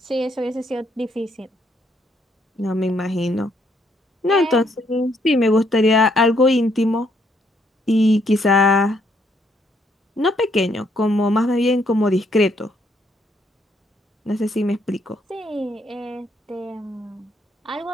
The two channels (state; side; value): normal; both; correlation 0.71